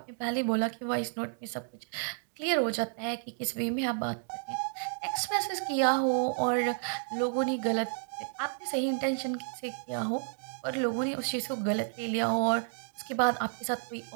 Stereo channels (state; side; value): silent; left; digital silence